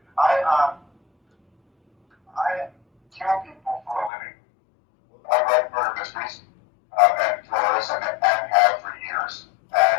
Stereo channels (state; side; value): drops out; right; at 4.1 s